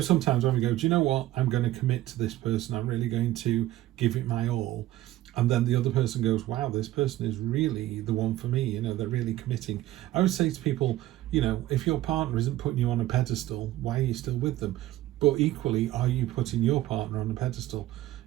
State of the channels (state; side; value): quieter; left; 15.1 dB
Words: sometimes when we go, do you know what? I'm going to commit to this person. I'm really going to give it my all. And then the other person goes, wow, this person is really the one for me. You know, they're really committing. I would say to people, you know, if your partner isn't putting you on a pedestal, why are you still with them? But equally, are you putting your partner on a pedestal?